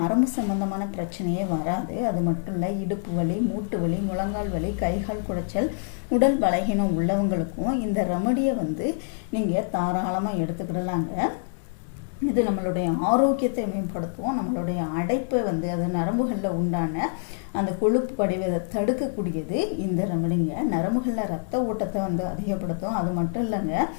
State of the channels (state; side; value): silent; right; digital silence